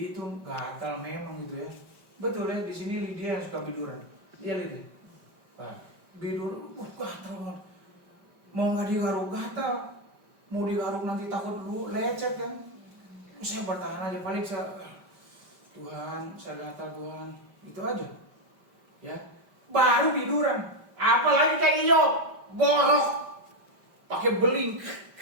gatal memang gitu ya. Betul ya, di sini Lydia yang suka biduran. Iya Lydia. Bidur, gatal banget. Mau nggak digaruk gatal, mau digaruk nanti takut dulu lecet kan. Saya bertahan aja, paling Tuhan, saya gatal Tuhan, itu aja. ya, baru tiduran. Apalagi kayak Iyob, borok, pakai beling.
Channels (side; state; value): left; late; 5.1 ms